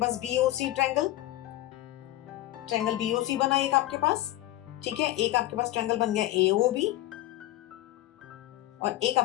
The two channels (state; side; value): quieter; right; 15.7 dB